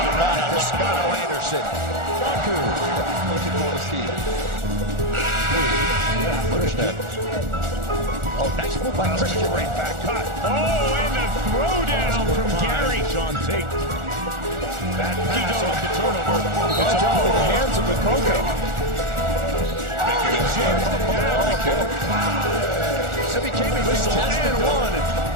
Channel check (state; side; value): late; left; 1.4 ms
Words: by Toscano Anderson. Looking for the seat. Oh, nice move by Christian. Right back cut. Oh, and the throwdown from Gary. Sean Tate. That pass off the turnover. It's off in the hands of the Coco. So became a whistle and one.